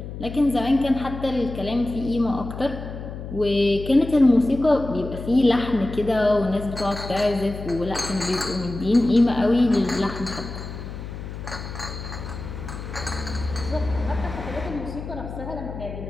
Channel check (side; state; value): left; noise; hum, 9 dB below the sound